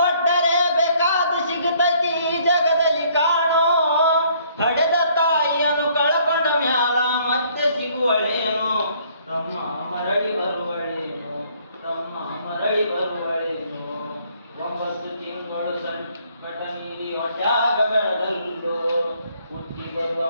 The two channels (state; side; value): inverted; both; correlation -0.63